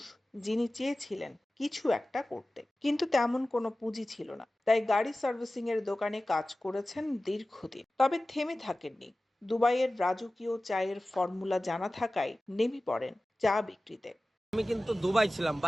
যিনি চেয়েছিলেন কিছু একটা করতে, কিন্তু তেমন কোনো পুঁজি ছিল না। তাই গাড়ি সার্ভিসিং এর দোকানে কাজ করেছেন দীর্ঘদিন। তবে থেমে থাকেননি। দুবাইয়ের রাজকীয় চায়ের ফর্মুলা জানা থাকায় নেমে পড়েন চা বিক্রিতে। আমি কিন্তু দুবাই ছিলাম,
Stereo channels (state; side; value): normal; both; correlation 0.96